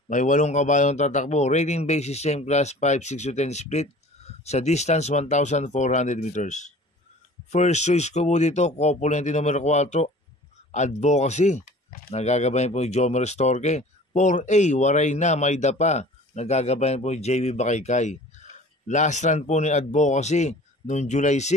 May 8 kabayong tatakbo. Rating basis same class 5, 6 to 10 split sa distance 1,400 meters. First choice ko po dito, Copulente numero 4, Advocacy. Nagagabayan po yung Jomer Storke. 4A, Waray na, May Dapa. Nagagabayan po yung JB Bakaykay. Last run po ni Advocacy noong July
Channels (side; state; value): both; normal; correlation 0.45